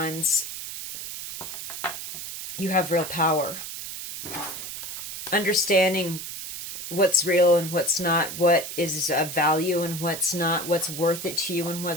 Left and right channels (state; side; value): noise; right; hiss, 8 dB below the sound